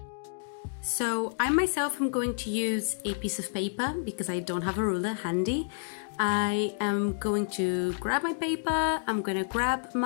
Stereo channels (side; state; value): right; silent; digital silence